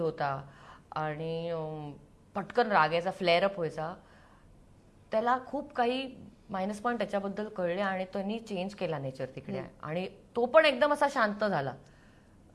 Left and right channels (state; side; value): identical; both; correlation 1.00